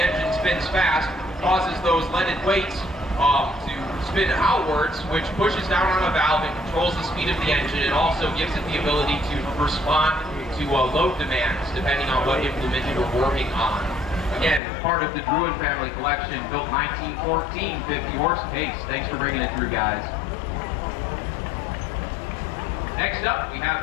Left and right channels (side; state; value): right; drops out; at 14.6 s